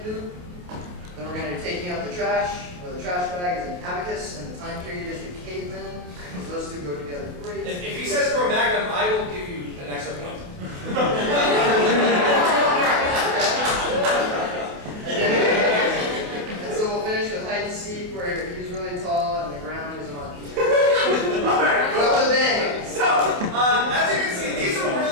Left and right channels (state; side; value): late; left; 28 ms